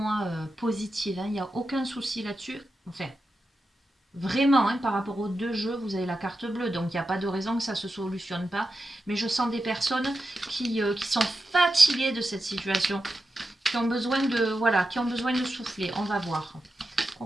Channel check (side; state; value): both; normal; correlation 0.90